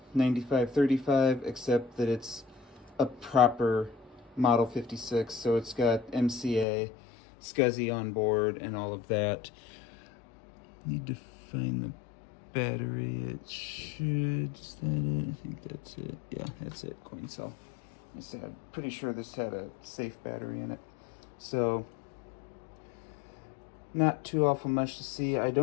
9535, except that it's a proper Model 56, so it's got MCA, SCSI on board, and all of that. Need to find the battery. It should, is that it? I think that's it. Yeah, that's it, coin cell. I'm pretty sure this had a safe battery in it. So, not too awful much to see. I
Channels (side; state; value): right; drops out; at 6.7 s